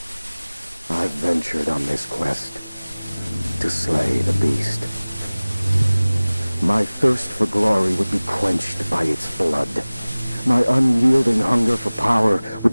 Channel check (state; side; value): inverted; both; correlation -0.99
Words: I've ventured on this quest to slay the beast. My thirst for glory would be quenched by its blood. My unyielding hunger for power